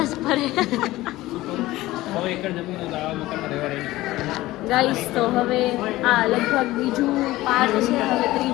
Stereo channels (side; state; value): right; quieter; 17.5 dB